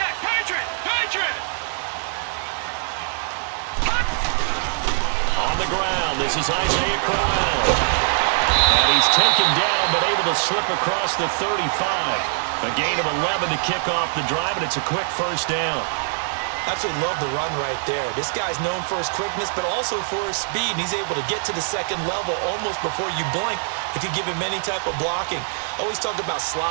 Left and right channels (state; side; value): silent; left; digital silence